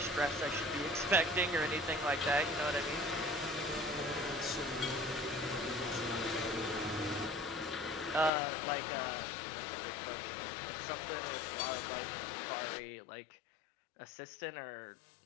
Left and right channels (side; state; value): right; drops out; at 8.3 s